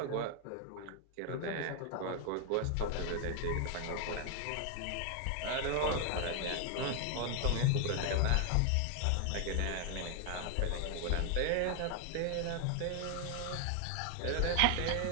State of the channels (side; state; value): both; different; correlation 0.00